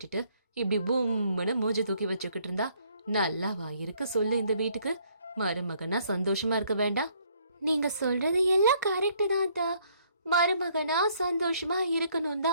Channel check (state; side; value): inverted; both; correlation -0.65